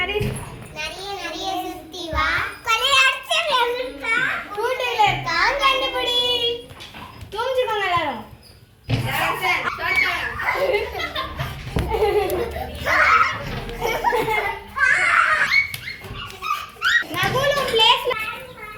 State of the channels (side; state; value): both; identical; correlation 1.00